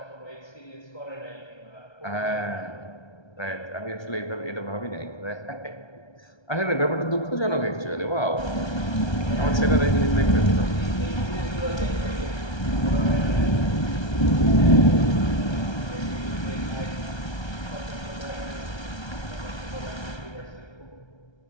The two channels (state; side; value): late; right; 1.3 ms